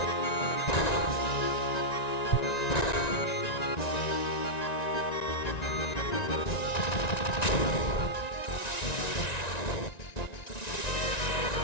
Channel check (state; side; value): late; right; 1.9 ms